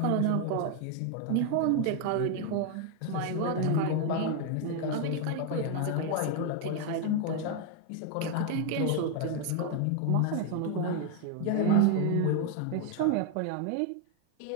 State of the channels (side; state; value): both; different; correlation 0.01